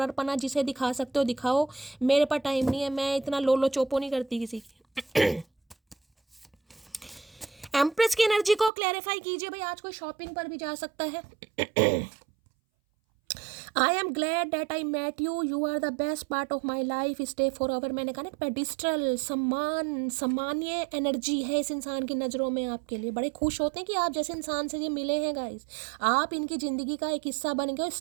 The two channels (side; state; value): left; drops out; at 8.7 s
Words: पना जिसे दिखा सकते हो दिखाओ, मेरे पास टाइम नहीं है, मैं इतना लोलो चोपो नहीं करती किसी की। एम्प्रेस की एनर्जी को क्लैरिफाई कीजिए भाई, आज कोई शॉपिंग पर भी जा सकता है। I am glad that I met you, you are the best part of my life, stay forever. मैंने कहा ना पेडिस्ट्रल सम्मान्य एनर्जी है इस इंसान की नज़रों में आपके लिए। बड़े खुश होते हैं कि आप जैसे इंसान से ये मिले हैं गाइस, आप इनकी ज़िंदगी का एक हिस्सा बन गए,